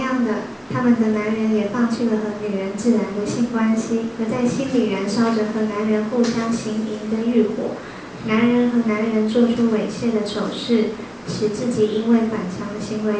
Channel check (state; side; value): identical; both; correlation 1.00